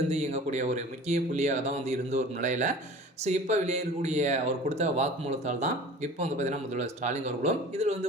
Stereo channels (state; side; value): normal; both; correlation 0.42